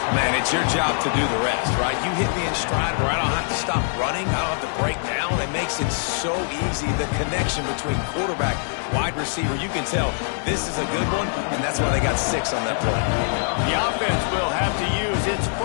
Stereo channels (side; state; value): right; silent; 59 dB below the other